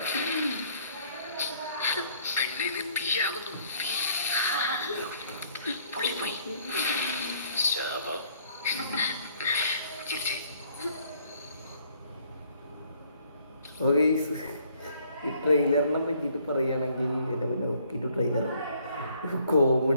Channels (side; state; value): both; inverted; correlation -0.63